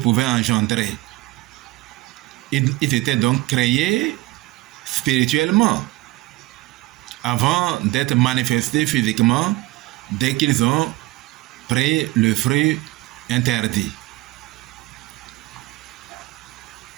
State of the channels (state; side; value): quieter; left; 19.6 dB